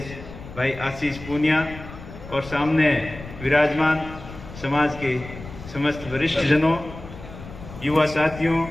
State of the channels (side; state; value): left; noise; rumble, 14 dB below the sound